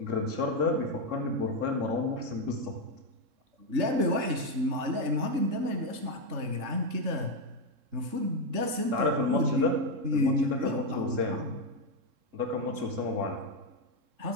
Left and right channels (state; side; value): late; left; 3.7 ms